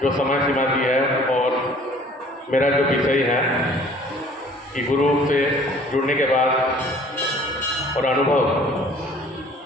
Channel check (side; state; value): both; normal; correlation 0.53